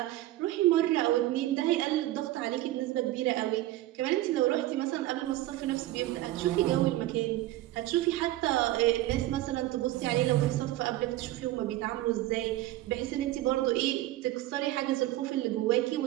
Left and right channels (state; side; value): quieter; left; 15.7 dB